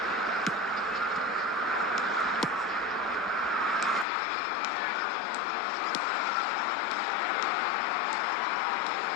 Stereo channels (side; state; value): right; drops out; at 4.0 s